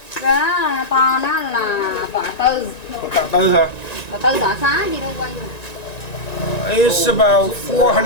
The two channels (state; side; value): late; right; 1.9 ms